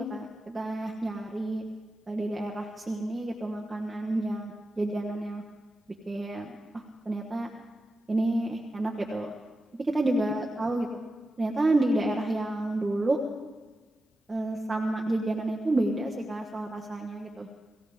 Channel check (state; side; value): normal; both; correlation 0.91